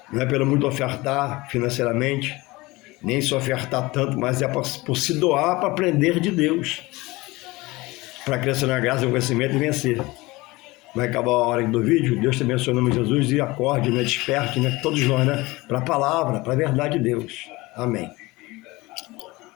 não é pelo muito ofertar financeiramente, nem se ofertar tanto, mas é por se doar para aprender de Deus, para crescer na graça, no conhecimento e vencer. Vai acabar a hora do vídeo, Deus te abençoe em nome de Jesus e acorde, né, desperte, né, todos nós, né, para a palavra, para a verdade de Deus. Amém.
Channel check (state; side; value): quieter; right; 21.6 dB